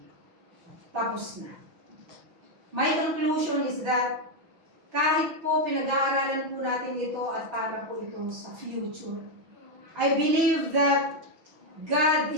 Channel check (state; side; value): late; left; 6.1 ms